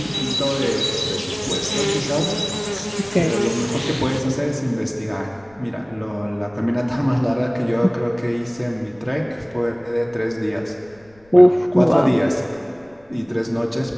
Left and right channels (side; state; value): left; noise; rumble, 30 dB below the sound